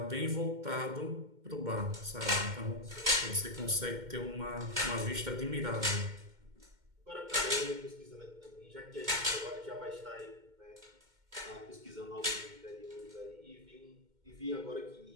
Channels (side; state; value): left; late; 2.1 ms